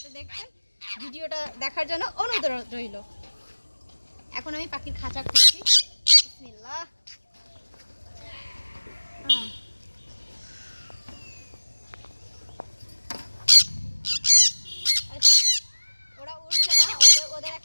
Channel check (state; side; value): inverted; both; correlation -1.00